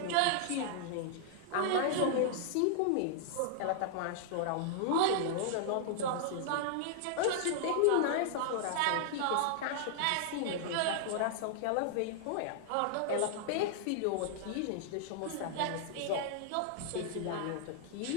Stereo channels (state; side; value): different; both; correlation -0.01